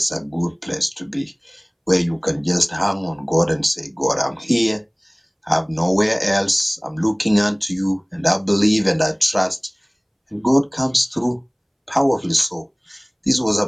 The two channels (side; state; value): both; identical; correlation 1.00